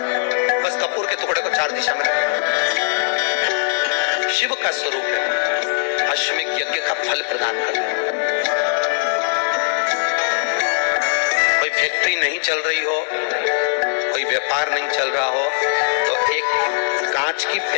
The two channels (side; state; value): right; silent; 66 dB below the other